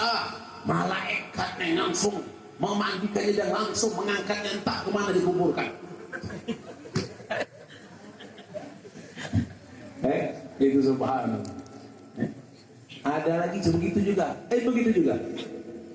Malaikatnya langsung memandikannya dan langsung mengangkatnya entah kemana dikuburkan. Itu subhanallah. Ada lagi begitu juga.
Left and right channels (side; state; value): both; identical; correlation 1.00